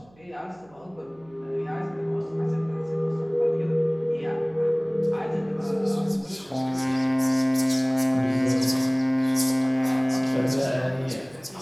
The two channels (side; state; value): right; noise; hum, 29 dB below the sound